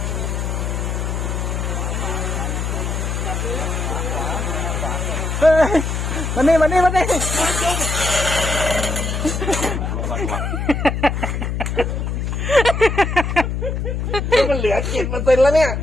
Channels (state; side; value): noise; left; hum, 2 dB below the sound